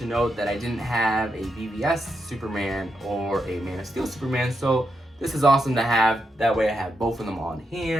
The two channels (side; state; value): both; normal; correlation 0.83